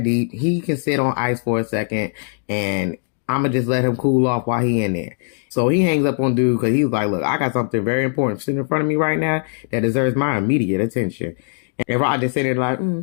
deep. He can sit on ice for a second, and I'ma just let him cool off while he in there. So he hangs up on dude because he's like, look, I got something very important sitting in front of me right now that deserves my immediate attention. And Rod just sitting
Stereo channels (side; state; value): right; silent; digital silence